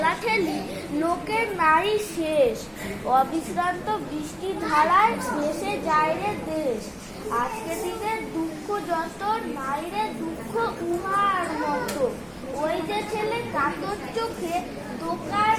লোকের নারী শেষ, অবিশ্রান্ত বৃষ্টি ধারায় ভেসে যায় রে দেশ। আজকে দিনের দুঃখ যত নাই রে দুঃখ উহার মতো, ওই যে ছেলে কাতর চোখে দোকান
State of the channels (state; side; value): identical; both; correlation 1.00